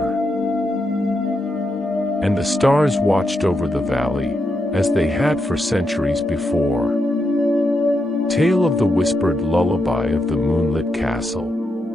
And the stars watched over the valley, as they had for centuries before. Tale of the whispered lullaby of the moonlit castle.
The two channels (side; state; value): both; normal; correlation 0.83